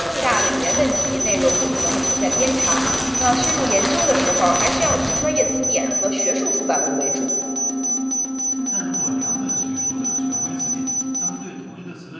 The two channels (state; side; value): identical; both; correlation 1.00